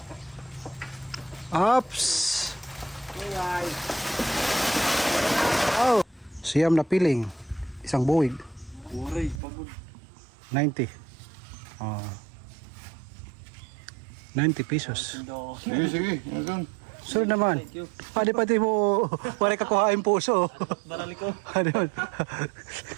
Ops. Oh. Siyam na piling. Isang buwig. 90. 90 pesos. Sige, sige. Yan. So naman. Pati mo wala ka kuhain puso. Barali ko. Ano?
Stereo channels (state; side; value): drops out; left; at 9.4 s